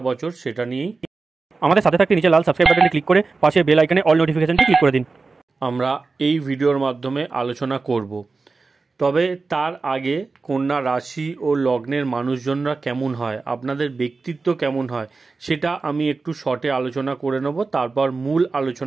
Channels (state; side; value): quieter; left; 4.1 dB